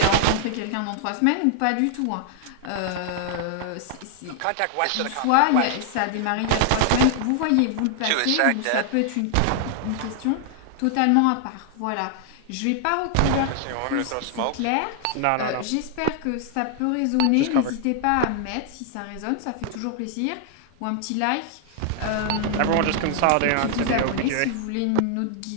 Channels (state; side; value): different; both; correlation 0.00